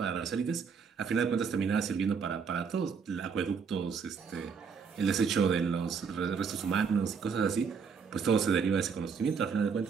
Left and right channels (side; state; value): left; quieter; 6.0 dB